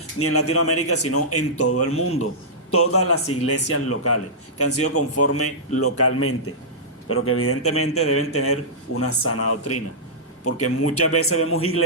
ni en Latinoamérica, sino en todo el mundo. Todas las iglesias locales que han sido conformes localmente, pero que evidentemente deben tener una sana doctrina. Porque muchas veces vemos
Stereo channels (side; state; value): both; normal; correlation -0.14